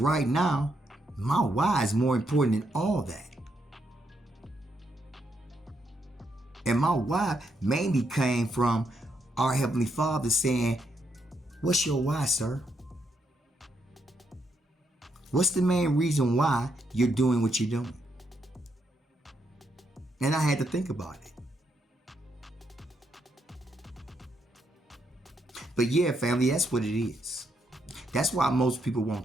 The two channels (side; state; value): both; normal; correlation 0.78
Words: now, my why is more important than all that. And my why mainly came from our Heavenly Father saying, what's your why, sir? What's the main reason why you're doing what you're doing? And I had to think about it. But yeah, family, that's what it is. That's why most people won't